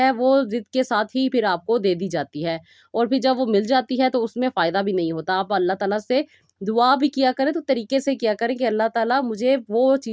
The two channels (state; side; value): identical; both; correlation 1.00